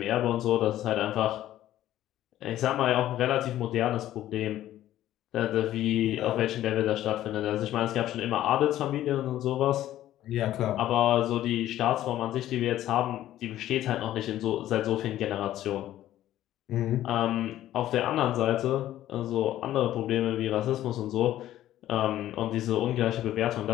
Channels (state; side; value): quieter; right; 13.2 dB